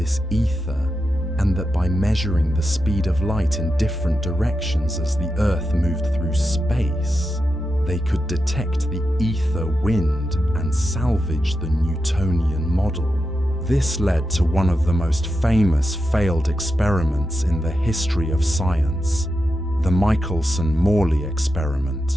ether, and that by measuring the speed of light in different directions as the Earth moved through space, they could detect the ether wind and salvage the Newtonian model. This led to one of the most famous failed experiments in the history of science, the Michelson-Morley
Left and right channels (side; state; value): both; normal; correlation 0.88